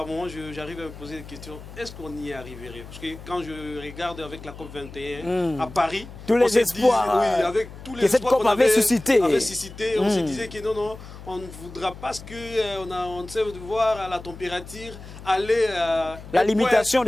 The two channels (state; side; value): noise; left; hum, 15 dB below the sound